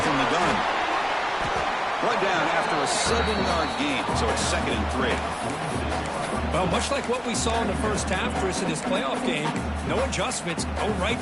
the gun. Brought down after a 7-yard gain, so it's 2nd and 3. Well, much like what we saw in the first half, Chris, in this playoff game, no adjustments. Go right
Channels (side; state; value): both; identical; correlation 1.00